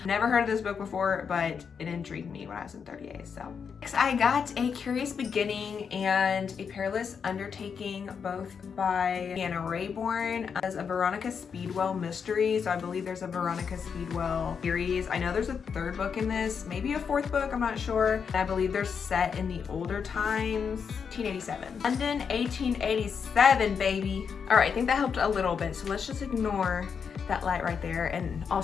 Never heard of this book before, but it intrigued me when I was in 30A, so. Next, I got A Curious Beginning and A Perilous Undertaking, both by Anna Rayborn, as a Veronica Speedwell mystery. So I believe there's a Veronica Speedwell series. I know there's a 3rd book in this, maybe a 4th book, I'm not sure. And I believe they're set in the older times, 1887. London, 1887, baby. All right, I think that helped a little bit, so let's just ignore that light right there and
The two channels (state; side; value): quieter; right; 6.5 dB